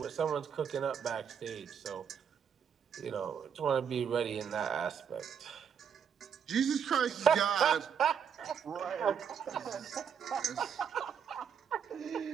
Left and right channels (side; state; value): left; quieter; 7.6 dB